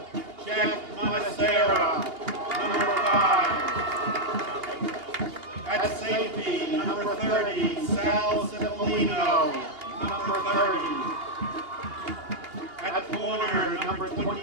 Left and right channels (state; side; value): late; left; 2.8 ms